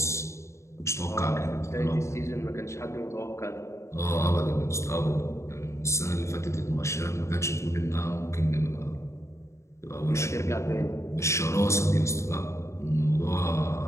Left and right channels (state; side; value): late; right; 0.14 ms